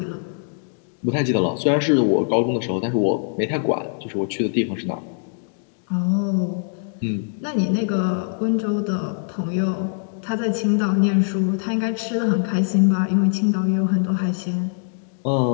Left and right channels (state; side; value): silent; right; digital silence